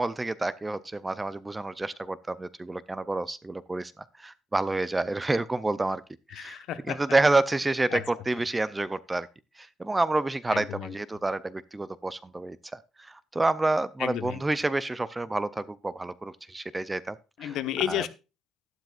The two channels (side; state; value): both; normal; correlation 0.93